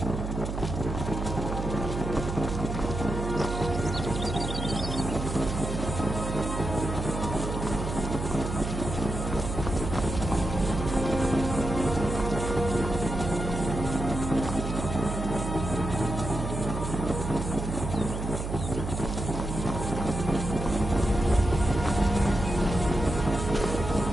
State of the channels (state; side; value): noise; right; hum, 4 dB below the sound